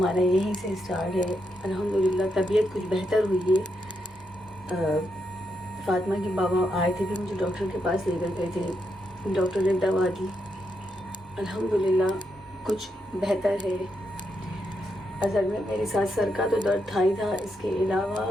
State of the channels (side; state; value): both; normal; correlation 0.82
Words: यहीं से स्टार्ट है। अल्हम्दुलिल्लाह तबीयत कुछ बेहतर हुई है। फ़ातिमा के बाबा आए थे, फिर मुझे डॉक्टर के पास लेकर गए थे। डॉक्टर ने दवा दी, अल्हम्दुलिल्लाह कुछ बेहतर है। असल में मेरे साथ सर का तो दर्द था ही था, इसके अलावा